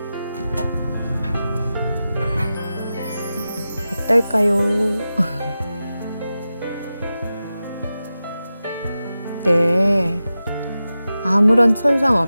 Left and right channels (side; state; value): both; inverted; correlation -0.93